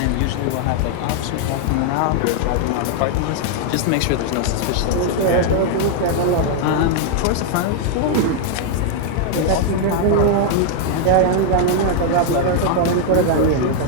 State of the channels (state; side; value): different; both; correlation 0.00